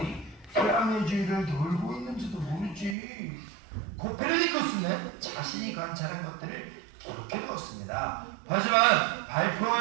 태양의 주위를 돌고 있는지도 모르지. 코페르니쿠스는 자신이 관찰한 것들을 기록해 두었습니다. 하지만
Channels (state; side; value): drops out; left; at 3.0 s